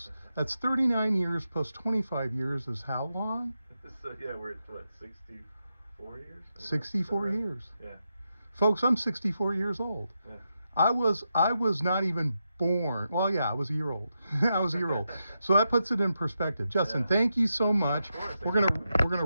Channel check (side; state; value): both; inverted; correlation -0.86